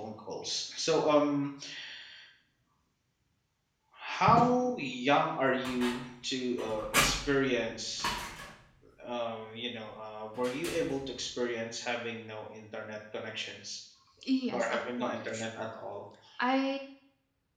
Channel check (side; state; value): both; identical; correlation 1.00